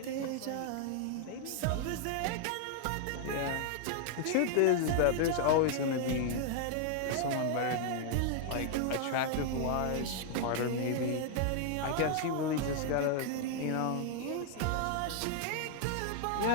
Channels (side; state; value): both; different; correlation 0.00